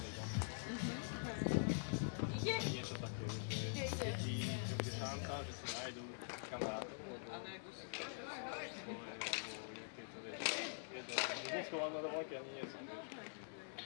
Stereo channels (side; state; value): right; silent; digital silence